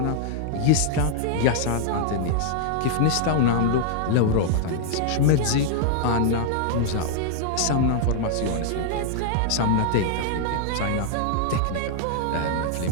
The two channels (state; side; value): different; both; correlation -0.01